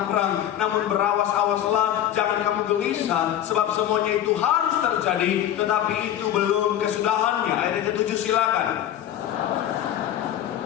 perang. Namun berawas-awaslah, jangan kamu gelisah, sebab semuanya itu harus terjadi, tetapi itu belum kesudahannya. Ayat yang ke-7 silakan.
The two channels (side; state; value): right; quieter; 11.2 dB